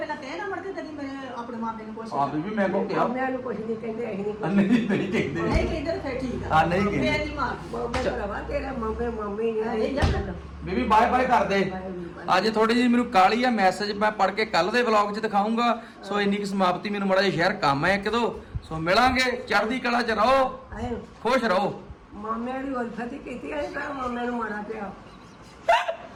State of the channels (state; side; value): identical; both; correlation 1.00